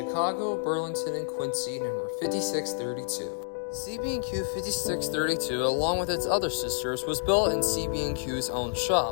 Burlington, and Quincy, number 5632. CB&Q 5632, along with its other sisters, was built in CB&Q's own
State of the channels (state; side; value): silent; right; digital silence